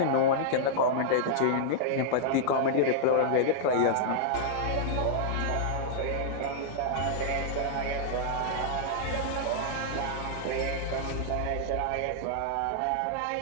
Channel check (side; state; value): both; different; correlation -0.02